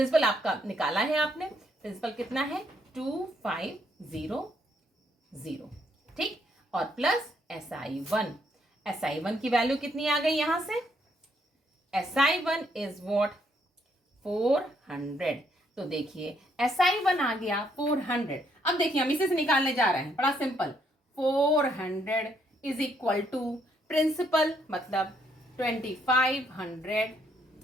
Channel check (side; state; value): both; normal; correlation 0.71